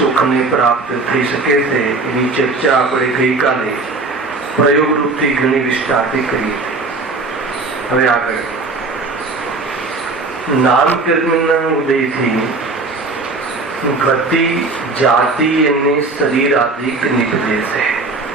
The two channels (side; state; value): left; quieter; 3.6 dB